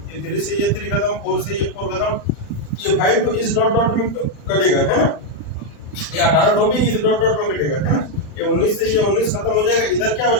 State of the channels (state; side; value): late; right; 39 ms